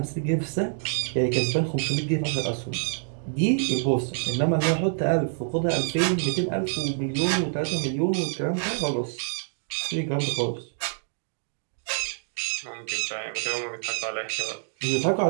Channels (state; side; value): silent; left; digital silence